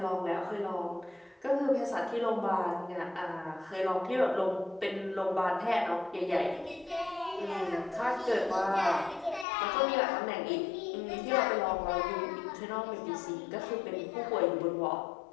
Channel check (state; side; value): drops out; right; at 9.5 s